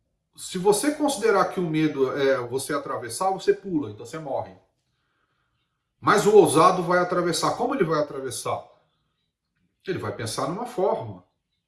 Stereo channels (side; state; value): both; identical; correlation 1.00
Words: se você considerar que o medo é você atravessar, você pula, então você morre. Mas o ousado vai atravessar. Como ele vai atravessar? Ele vai pensar numa forma.